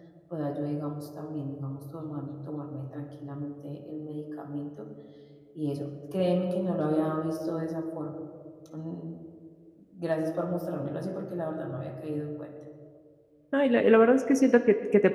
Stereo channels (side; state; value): both; identical; correlation 1.00